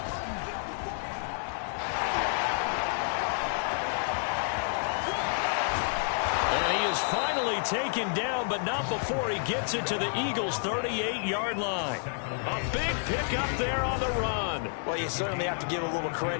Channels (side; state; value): right; silent; digital silence